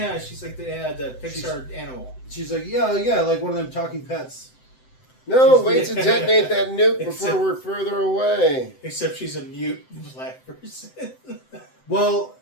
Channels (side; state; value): right; late; 7.8 ms